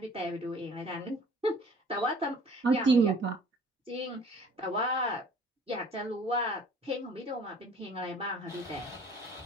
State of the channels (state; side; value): normal; both; correlation 0.51